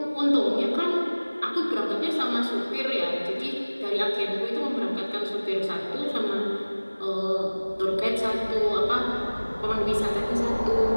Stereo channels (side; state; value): both; inverted; correlation -1.00